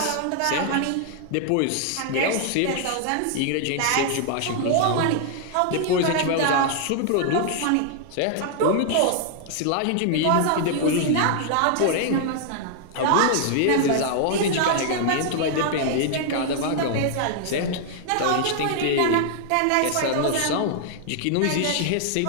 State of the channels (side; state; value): both; different; correlation 0.00